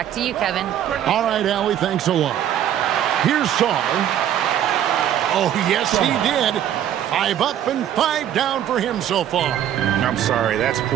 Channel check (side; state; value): left; quieter; 10.7 dB